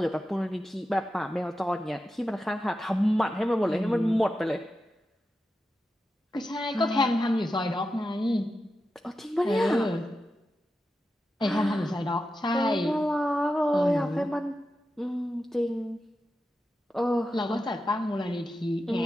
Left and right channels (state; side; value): normal; both; correlation 0.90